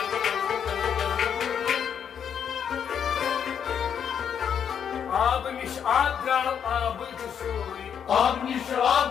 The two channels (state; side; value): quieter; right; 8.0 dB